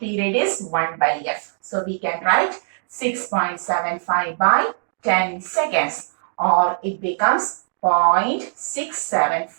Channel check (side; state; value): left; silent; digital silence